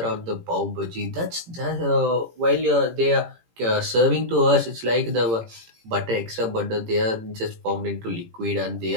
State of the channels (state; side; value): late; left; 18 ms